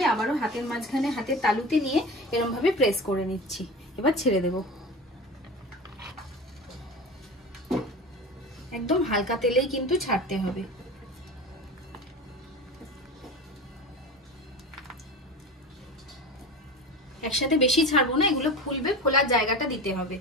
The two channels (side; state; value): both; normal; correlation 0.30